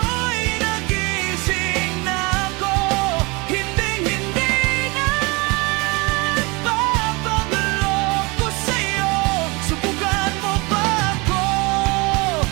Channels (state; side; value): quieter; left; 26.7 dB